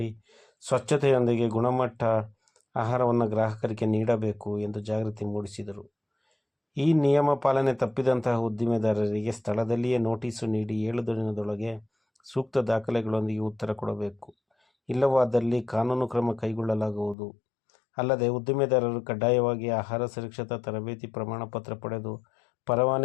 ಸ್ವಚ್ಛತೆಯೊಂದಿಗೆ ಗುಣಮಟ್ಟ ಆಹಾರವನ್ನು ಗ್ರಾಹಕರಿಗೆ ನೀಡಬೇಕು ಎಂದು ಜಾಗೃತಿ ಮೂಡಿಸಿದರು. ಈ ನಿಯಮ ಪಾಲನೆ ತಪ್ಪಿದಂತಹ ಉದ್ದಿಮೆದಾರರಿಗೆ ಸ್ಥಳದಲ್ಲಿಯೇ ನೋಟಿಸು ನೀಡಿ 7 ದಿನದೊಳಗೆ ಸೂಕ್ತ ದಾಖಲೆಗಳೊಂದಿಗೆ ಉತ್ತರ ಕೊಡಬೇಕು. ಇಲ್ಲವಾದಲ್ಲಿ ಕಾನೂನು ಕ್ರಮ ಕೈಗೊಳ್ಳಲಾಗುವುದು. ಅಲ್ಲದೆ ಉದ್ದಿಮೆದಾರರು ಕಡ್ಡಾಯವಾಗಿ ಆಹಾರ ಸುರಕ್ಷತಾ ತರಬೇತಿ ಪ್ರಮಾಣ ಪತ್ರ ಪಡೆದು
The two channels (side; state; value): right; drops out; at 17.2 s